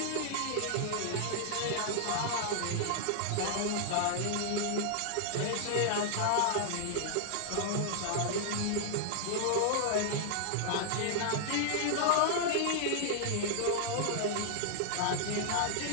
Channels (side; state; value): both; different; correlation -0.01